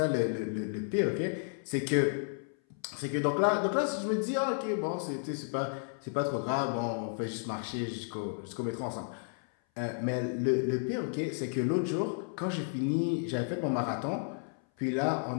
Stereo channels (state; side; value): silent; right; 56 dB below the other